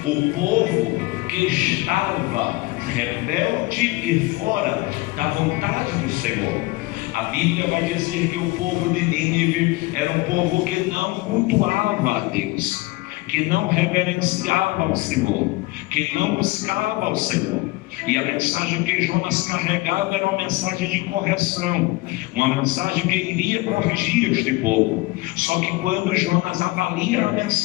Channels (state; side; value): quieter; right; 21.6 dB